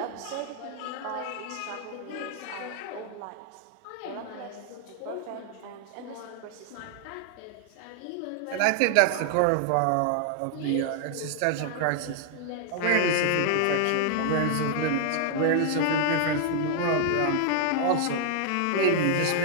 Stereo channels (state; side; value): different; both; correlation 0.00